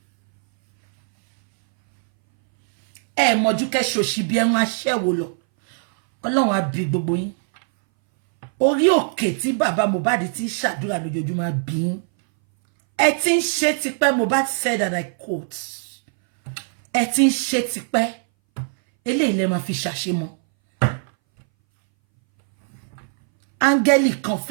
Mojuke shoshi bi en asewo lo. Ọlọ́run á bí gbogbo yín. Orí òkè tí bàbá Mohbad ti ṣàdúrà lójoojúmọ́ bí. Ẹ tin ṣe tipẹ́, Mohbad said, and I quote. Ẹ tin ṣe tipẹ́. Eléyìí lẹ máa fi ṣàṣemọ́. Áńgẹ́lì kan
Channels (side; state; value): left; silent; 62 dB below the other